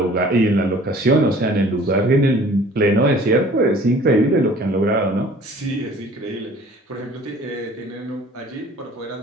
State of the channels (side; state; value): both; normal; correlation 0.51